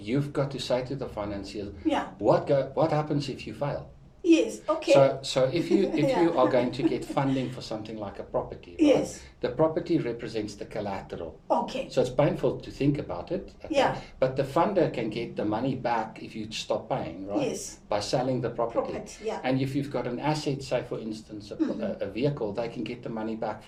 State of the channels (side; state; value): both; identical; correlation 1.00